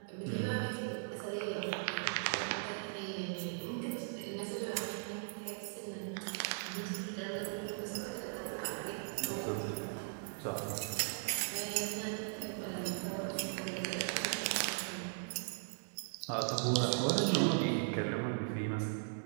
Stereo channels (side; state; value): left; silent; digital silence